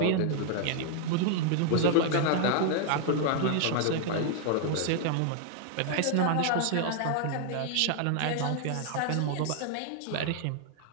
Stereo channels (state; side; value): different; both; correlation 0.00